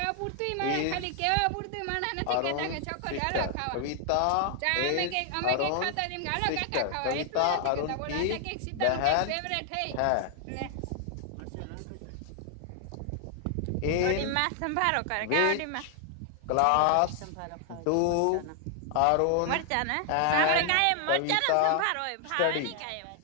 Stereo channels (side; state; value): both; different; correlation 0.00